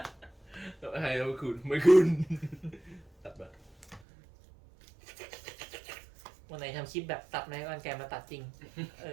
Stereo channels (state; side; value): drops out; left; at 4.0 s